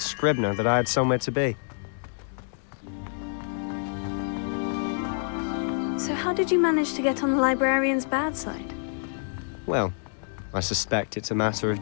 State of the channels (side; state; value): right; silent; digital silence